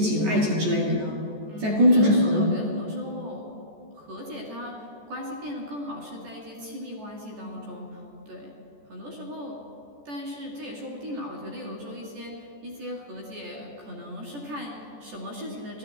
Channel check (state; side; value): late; left; 14 ms